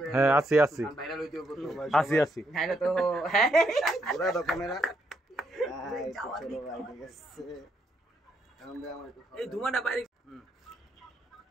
হ্যাঁ আসি ভাইরাল হইতে হবে আসি হ্যাঁ তো পুরো দাও ক্যামেরা চলো ভাই ঠিক আছে আমরা আমার এই ধুমাটা বাইরে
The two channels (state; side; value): normal; both; correlation 0.76